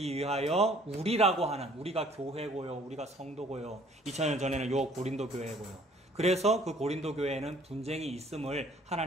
위하여 우리라고 하는 우리가 교회고요. 우리가 성도고요. 2000년 전에는 요 고린도 교회고요. 그래서 그 고린도 교회에는 분쟁이 있음을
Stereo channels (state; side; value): normal; both; correlation 0.57